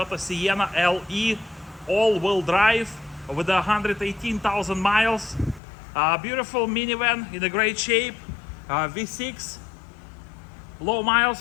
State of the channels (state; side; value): drops out; right; at 5.6 s